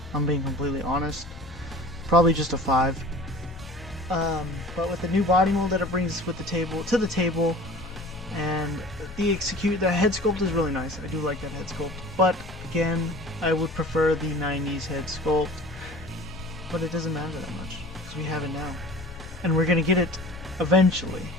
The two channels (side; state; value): both; normal; correlation 0.43